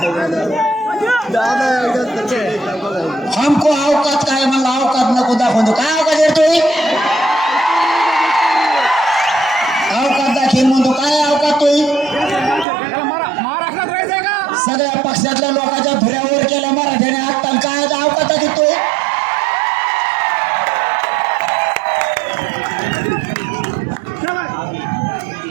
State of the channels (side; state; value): left; drops out; at 12.7 s